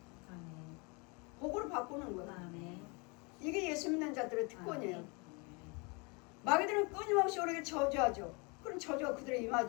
아멘. 복으로 바꾸는 거예요. 아멘. 이게 예수 믿는 자들의 특권이에요. 아멘. 마귀들은 끊임없이 우리에게 저주하죠. 그럼 저주가 그들에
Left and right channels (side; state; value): right; quieter; 30.7 dB